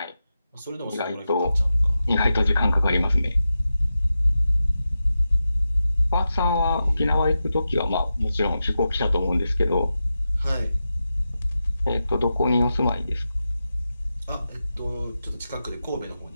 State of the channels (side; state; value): both; inverted; correlation -0.91